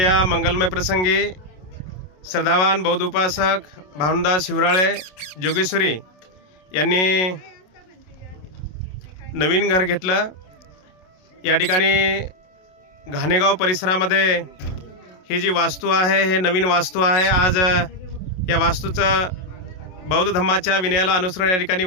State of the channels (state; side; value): late; right; 27 ms